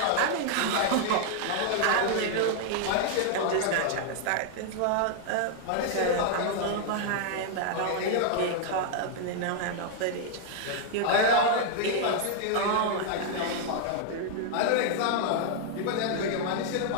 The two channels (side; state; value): both; different; correlation 0.00